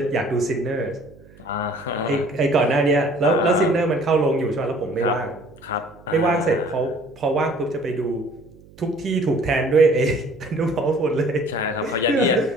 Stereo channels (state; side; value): noise; right; hum, 24 dB below the sound